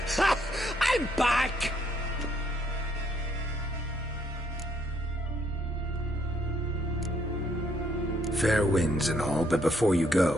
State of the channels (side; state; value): both; normal; correlation 0.70